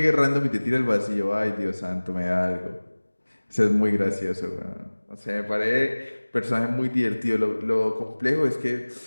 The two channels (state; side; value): inverted; both; correlation -1.00